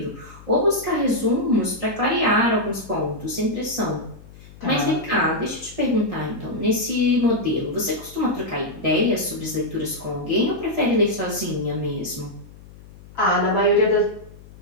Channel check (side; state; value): left; noise; hum, 20 dB below the sound